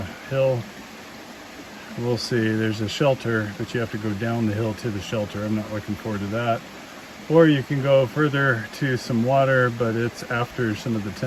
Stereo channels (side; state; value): both; identical; correlation 1.00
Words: hill, we'll see. There's a shelter, but you have to go down the hill to the shelter. I'm not looking forward to that. Or you can go further to some water, but it's after some of the